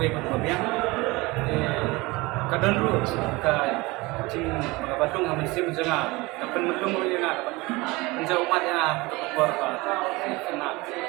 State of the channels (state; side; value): quieter; left; 22.9 dB